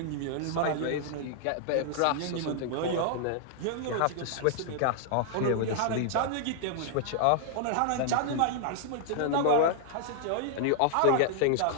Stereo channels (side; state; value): both; different; correlation 0.00